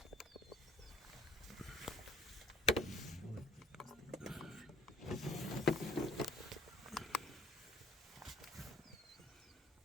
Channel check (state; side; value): normal; both; correlation 0.52